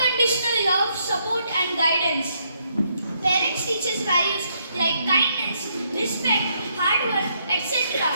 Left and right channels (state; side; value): inverted; both; correlation -0.74